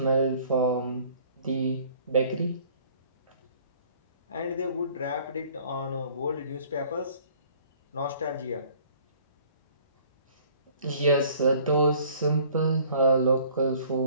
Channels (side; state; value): both; inverted; correlation -0.54